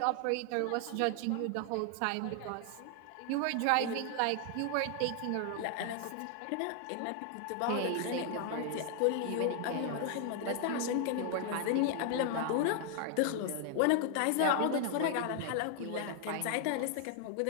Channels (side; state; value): both; different; correlation 0.00